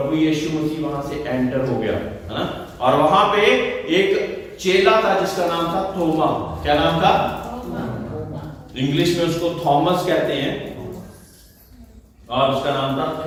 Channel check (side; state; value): both; identical; correlation 1.00